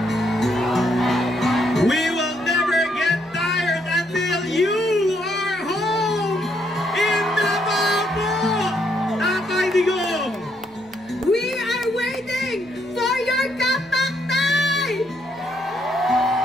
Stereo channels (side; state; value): both; normal; correlation 0.74